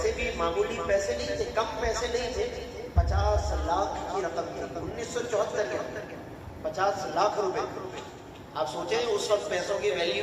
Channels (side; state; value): both; identical; correlation 1.00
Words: بھی معمولی پیسے نہیں تھے، کم پیسے نہیں تھے، 50 لاکھ کی رقم تھی 1974 کے اندر، 50 لاکھ روپے۔ آپ سوچیں اس وقت پیسوں کی